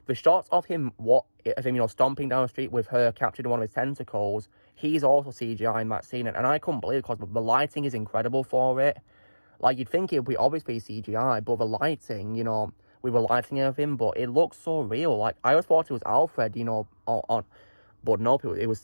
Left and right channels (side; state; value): both; inverted; correlation -1.00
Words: the shots of him stomping down the street with her captured in one of his tentacles he's also CGI in that scene, and I couldn't believe it because the lighting is incredible for it. Like, you'd think it would be obviously CGI, but the lighting, you know, we were lighting everything, but it looks so real. Like, I always thought it was Alfred, you know, but nope, it was